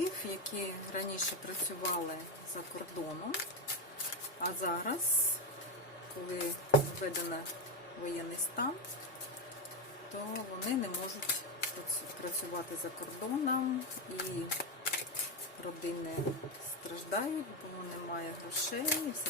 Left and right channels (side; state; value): both; normal; correlation 0.11